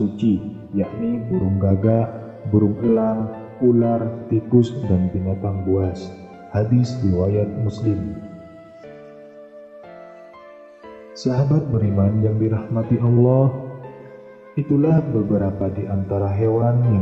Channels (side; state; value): both; identical; correlation 1.00